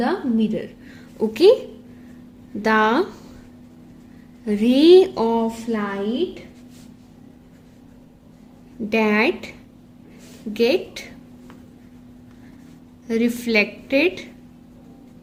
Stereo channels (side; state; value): both; identical; correlation 1.00